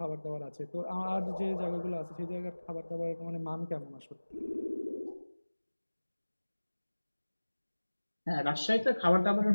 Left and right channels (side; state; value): both; inverted; correlation -1.00